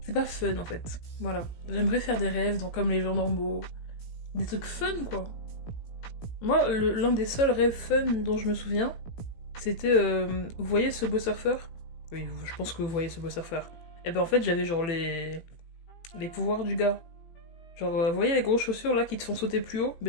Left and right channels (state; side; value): late; right; 18 ms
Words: C'est pas fun, en fait. Voilà. J'aimerais faire des rêves, donc comme les gens normaux. Des trucs fun, quoi. Moi, l'un des seuls rêves fun dont je me souviens, c'était... vous voyez ce beau surfeur? Oui, je pense que vous voyez ce beau surfeur. Et ben en fait, j'avais genre les pouvoirs du gars. Genre, vous voyez les grosses chaussures là qui te font sauter plus haut?